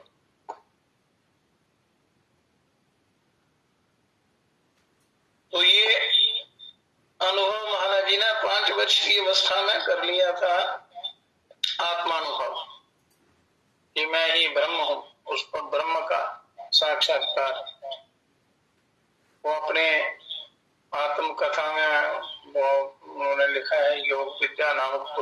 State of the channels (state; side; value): identical; both; correlation 1.00